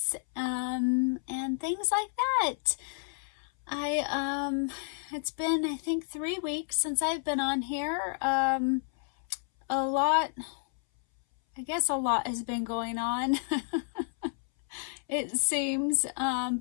and things like that. It's been, I think, 3 weeks since I've been on here. I guess a lot has been going on. It seems,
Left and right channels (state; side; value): silent; right; 57 dB below the other